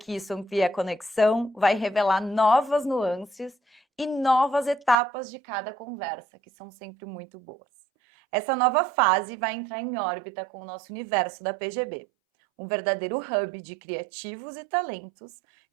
isso amplia a conexão, vai revelar novas nuances e novas etapas de cada conversa, que são sempre muito boas. Essa nova fase vai entrar em órbita com o nosso universo da PGB, um verdadeiro hub de criativos e talentos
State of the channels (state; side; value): drops out; left; at 5.0 s